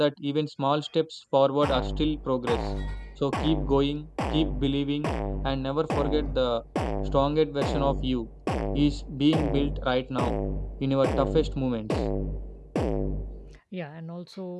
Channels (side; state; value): both; identical; correlation 1.00